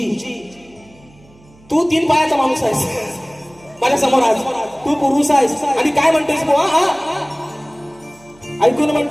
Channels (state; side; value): noise; right; hum, 28 dB below the sound